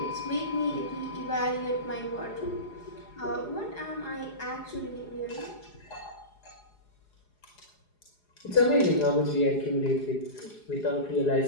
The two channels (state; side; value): late; right; 4.8 ms